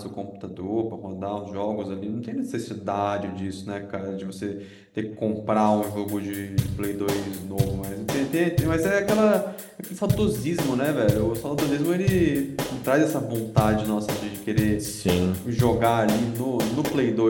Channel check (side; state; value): both; identical; correlation 1.00